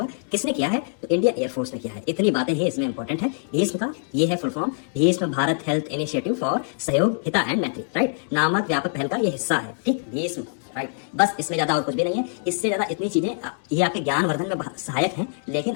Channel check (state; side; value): silent; right; digital silence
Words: किसने किया है? तो इंडियन एयरफोर्स ने किया है। इतनी बातें ही इसमें इंपॉर्टेंट है। भीष्म का ये है full form, Bhishma Bharat health initiative for सहयोग हिता एंड मैत्री, राइट, नामक व्यापक पहल का ये हिस्सा है। ठीक, भीष्म, राइट। बस इसमें ज्यादा और कुछ भी नहीं है। इससे ज्यादा इतनी चीजें ये आपके ज्ञानवर्धन में सहायक हैं, लेकिन